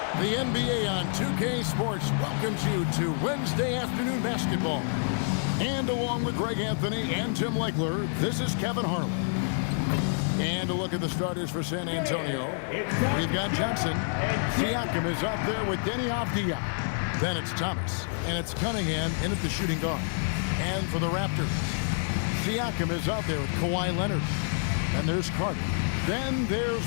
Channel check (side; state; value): right; silent; digital silence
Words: The NBA on 2K Sports welcomes you to Wednesday afternoon basketball. And along with Greg Anthony and Tim Legler, this is Kevin Harlan. And a look at the starters for San Antonio. We've got Johnson. Siakam is up there with Deni Avdija. Then it's Thomas. And it's Cunningham in at the shooting guard. And for the Raptors, Siakam is out there with Kawhi Leonard. Then there's Carter. Then there's